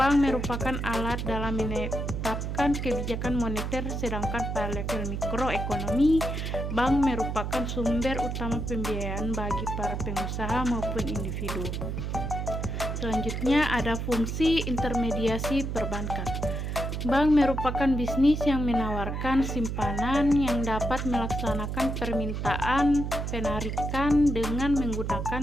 merupakan alat dalam menetapkan kebijakan moneter, sedangkan pada level mikroekonomi bank merupakan sumber utama pembiayaan bagi para pengusaha maupun individu. Selanjutnya ada fungsi intermediasi perbankan. Bank merupakan bisnis yang menawarkan simpanan yang dapat melaksanakan permintaan penarikan dengan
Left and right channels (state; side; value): noise; right; hum, 3 dB below the sound